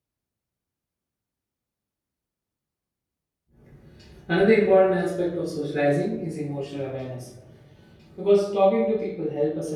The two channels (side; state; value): both; identical; correlation 1.00